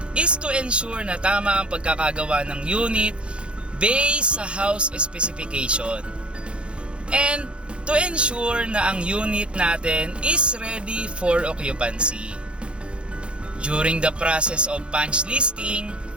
is to ensure na tama ang pagkakagawa ng unit based sa house specification. And to ensure na ang unit natin is ready for occupancy. During the process of punch listing,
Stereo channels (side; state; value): left; late; 0.057 ms